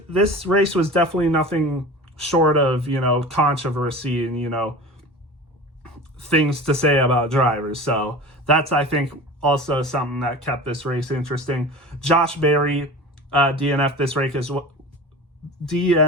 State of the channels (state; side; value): normal; both; correlation 0.35